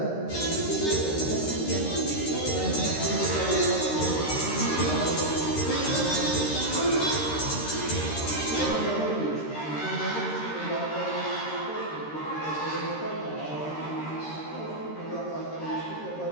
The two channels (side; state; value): right; late; 13 ms